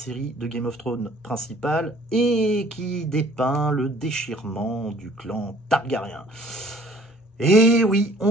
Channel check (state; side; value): normal; both; correlation 0.55